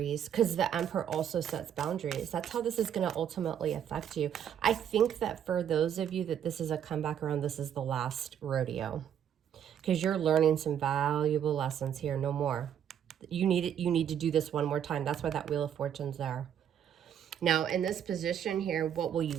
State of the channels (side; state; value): left; quieter; 9.3 dB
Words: because the Emperor also sets boundaries. That's how this is going to ultimately affect you. I think that for those of you that this is a comeback around, this is the last rodeo, because you're learning some valuable lessons here. No more. You need to do this one more time. That's why that Wheel of Fortune's there. Now, in this position here, what will you